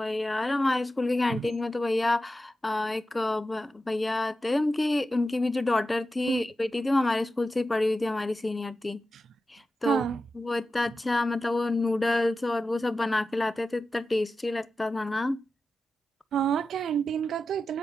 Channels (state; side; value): normal; both; correlation 0.92